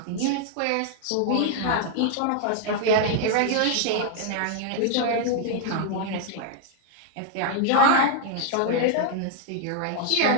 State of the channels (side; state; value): both; different; correlation 0.00